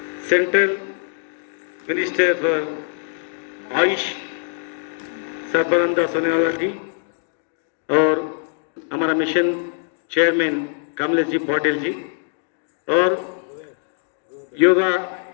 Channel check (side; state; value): right; silent; 64 dB below the other